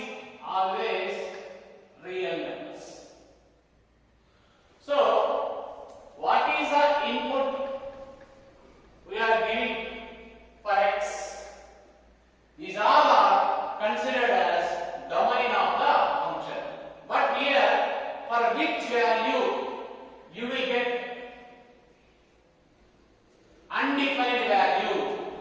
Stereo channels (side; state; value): both; identical; correlation 1.00